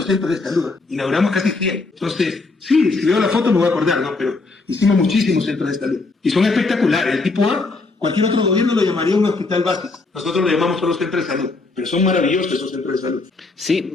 centros de salud, inauguramos casi 100. Entonces, sí, si veo la foto me voy a acordar, ¿no? Pero hicimos muchísimos centros de salud. Y son espectaculares. El tipo A, cualquier otro gobierno lo llamaría un hospital básico. Nosotros lo llamamos solo centros de salud. Pero son maravillosos esos centros de salud. Sí,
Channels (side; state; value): right; quieter; 3.6 dB